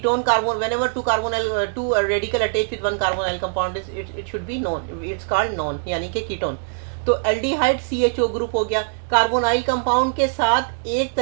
carbon, whenever 2 radical attach with 1 carbonyl compound, it should B non, it's called non, यानी कि कीटोन। तो एल्डिहाइड CHO ग्रुप हो गया। कार्बोनाइल कंपाउंड के साथ एक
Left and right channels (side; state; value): left; silent; digital silence